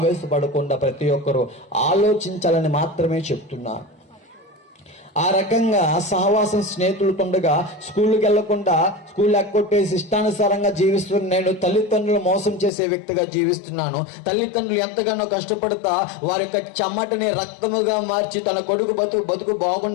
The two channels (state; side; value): drops out; right; at 12.7 s